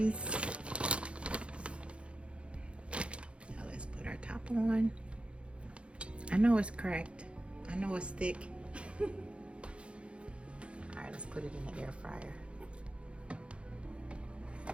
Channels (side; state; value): left; late; 0.059 ms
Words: Now let's put our top on. I know it's cracked. I know it's thick. All right, let's put it in the air fryer.